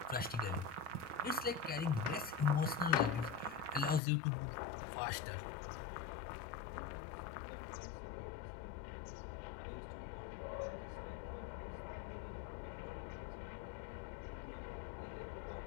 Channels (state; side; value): drops out; right; at 4.0 s